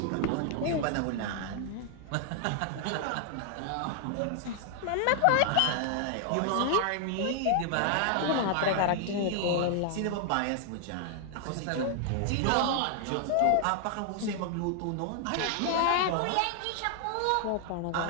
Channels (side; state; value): both; different; correlation 0.00